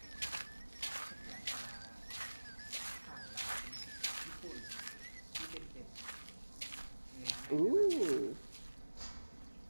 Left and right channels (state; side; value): inverted; both; correlation -1.00